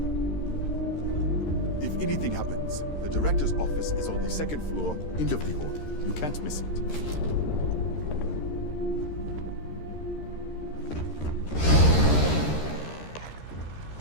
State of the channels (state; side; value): late; right; 13 ms